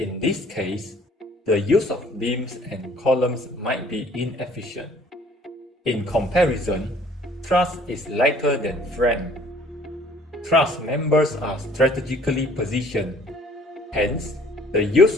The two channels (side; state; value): both; normal; correlation 0.56